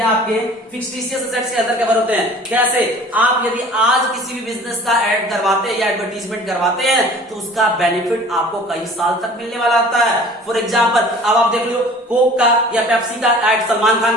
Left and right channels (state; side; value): normal; both; correlation 0.46